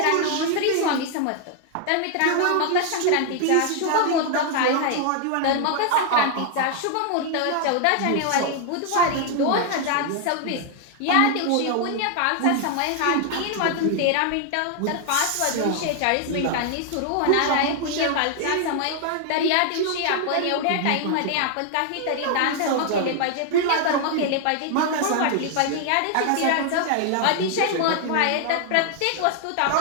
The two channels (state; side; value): different; both; correlation 0.00